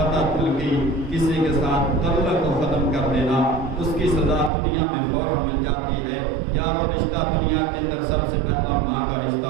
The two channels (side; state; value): left; drops out; at 4.5 s